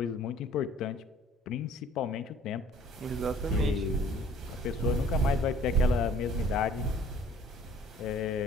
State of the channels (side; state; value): both; normal; correlation 0.53